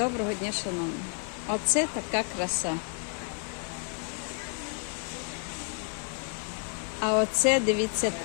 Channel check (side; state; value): right; quieter; 37.8 dB